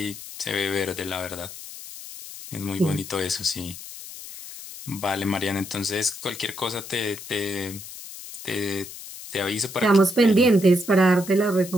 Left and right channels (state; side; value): noise; left; hiss, 13 dB below the sound